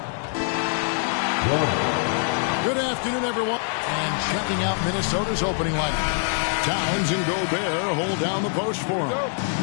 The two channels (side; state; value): right; silent; 59 dB below the other